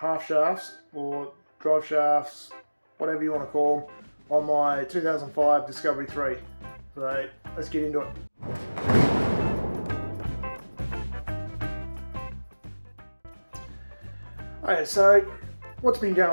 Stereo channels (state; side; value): inverted; both; correlation -1.00